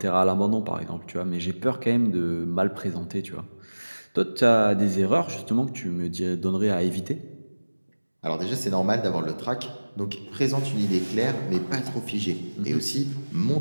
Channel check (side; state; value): both; inverted; correlation -1.00